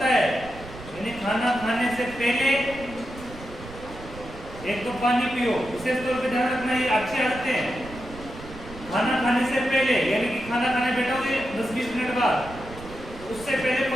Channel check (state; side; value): noise; right; rumble, 15 dB below the sound